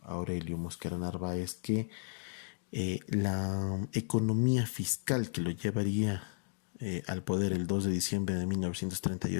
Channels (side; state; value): right; silent; digital silence